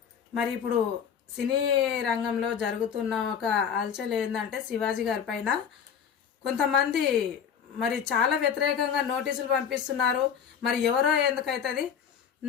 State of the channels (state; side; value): quieter; right; 7.6 dB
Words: మరి ఇప్పుడు సినీ రంగంలో జరుగుతున్న ఒక అలచల్ ఏంటంటే శివాజీ గారి పైన కొంతమంది మరి చాలా వ్యతిరేకంగా నోటీసులు పంపిస్తున్నారు. మరి ఎవరో ఎందుకైతుంది,